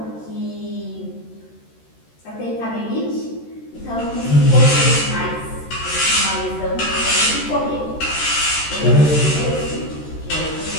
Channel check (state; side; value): late; right; 13 ms